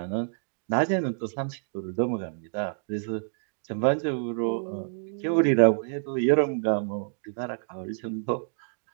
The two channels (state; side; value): silent; left; digital silence